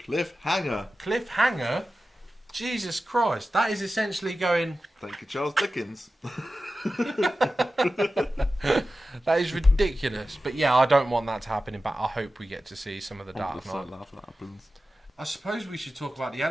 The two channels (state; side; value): normal; both; correlation 0.94